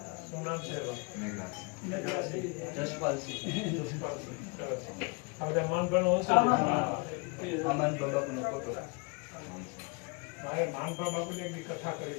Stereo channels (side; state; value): right; quieter; 31.3 dB